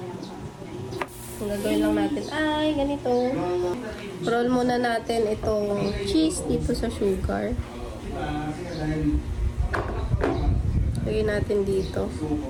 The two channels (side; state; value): both; identical; correlation 1.00